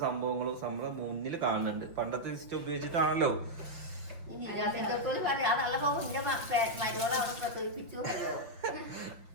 സംഭവങ്ങളും നമ്മളെ മുന്നിൽ കാണുന്നുണ്ട്. പണ്ടത്തെ സിസ്റ്റം ഉപയോഗിച്ചിട്ടാണല്ലോ.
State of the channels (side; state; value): left; late; 5.8 ms